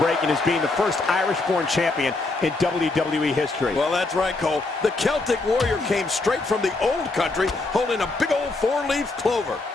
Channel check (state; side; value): quieter; right; 3.3 dB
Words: is being the first Irish-born champion in WWE history. Well, that's right, Cole. The Celtic Warrior came straight from the old country holding a big old four-leaf clover.